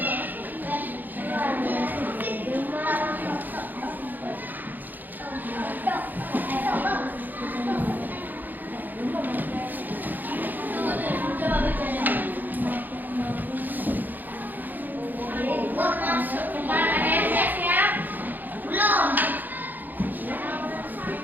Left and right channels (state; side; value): late; left; 0.086 ms